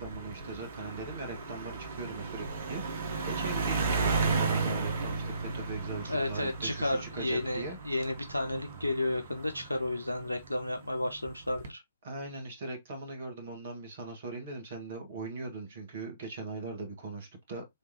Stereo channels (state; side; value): inverted; both; correlation -0.71